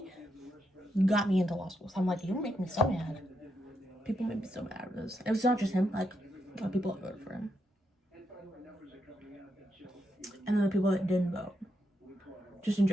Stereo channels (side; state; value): both; normal; correlation 0.81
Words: got me into law school. So I'm like, you make me so mad. People make me so mad with this. It was not just him. Like, a lot of people that voted for him. And then the people that didn't vote. Just in